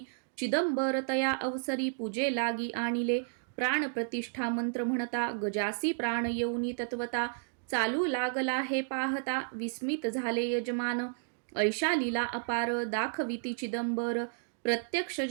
चिदंबर तया अवसरी, पूजे लागी आणिले. प्राण प्रतिष्ठा मंत्र म्हणता, गजासी प्राण येऊनी तत्वता. चालू लागला हे पाहता, विस्मित झाले यजमान. ऐशा लीला अपार, दाखविती चिदंबर. प्रत्यक्ष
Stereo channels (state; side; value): silent; left; 56 dB below the other